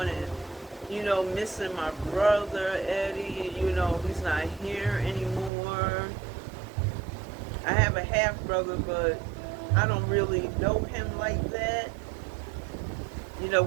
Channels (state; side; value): drops out; left; at 5.5 s